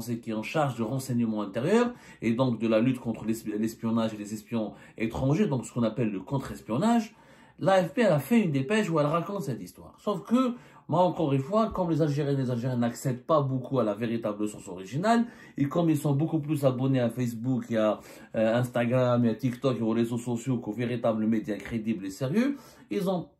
qui est en charge du renseignement intérieur et donc de la lutte contre l'espionnage et les espions étrangers, donc ce qu'on appelle le contre-espionnage. L'AFP a fait une dépêche où elle raconte cette histoire. Sauf que, moi encore une fois, comme les Algériens et les Algériens n'accèdent pas beaucoup à la véritable source originale, et comme ils sont beaucoup plus abonnés à Facebook et à Instagram et à TikTok et aux réseaux sociaux qu'aux véritables médias crédibles et sérieux, ils ont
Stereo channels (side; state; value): both; identical; correlation 1.00